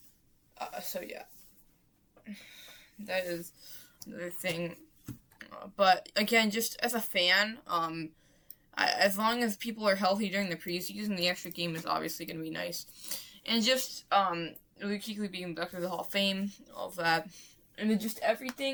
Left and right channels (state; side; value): identical; both; correlation 1.00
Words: That is another thing. But again, just as a fan, as long as people are healthy during the preseason, the extra game is obviously going to be nice. And just Luke being inducted to the Hall of Fame, all of that, and then just